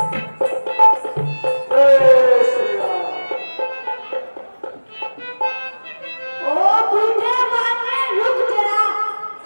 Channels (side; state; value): both; inverted; correlation -1.00